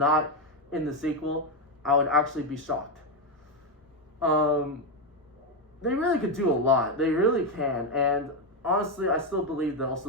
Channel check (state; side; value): normal; both; correlation 0.07